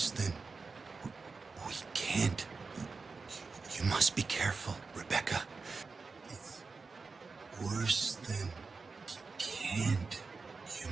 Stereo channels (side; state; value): left; quieter; 4.4 dB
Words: than... We can't. You must be careful, Rebecca. It's worse than... Can't. You